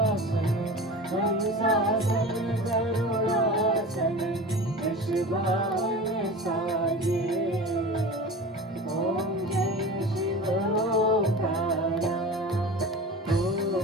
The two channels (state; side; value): normal; both; correlation 0.33